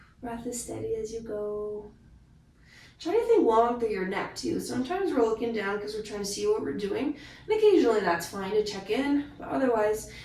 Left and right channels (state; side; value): identical; both; correlation 1.00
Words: Breath as steady as you go. Try to think long through your neck too. Sometimes we're looking down because we're trying to see what we're doing. And occasionally that's fine to check in. But otherwise,